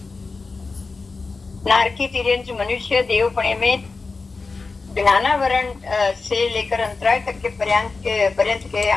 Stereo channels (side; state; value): right; quieter; 4.1 dB